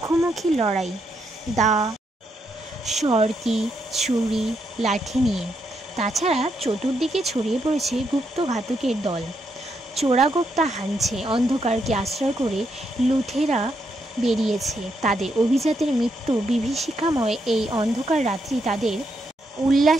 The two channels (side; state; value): both; normal; correlation 0.79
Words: লড়াই, দা, সরকি, ছুরি, লাঠি নিয়ে। তাছাড়া চতুর্দিকে ছড়িয়ে পড়েছে গুপ্তঘাতকের দল। চোরাগোপ্তা হানছে, অন্ধকারকে আশ্রয় করে লুঠেরা বেরিয়েছে। তাদের অভিজাতের মৃত্যু বিভীষিকাময় এই অন্ধকার রাত্রি তাদের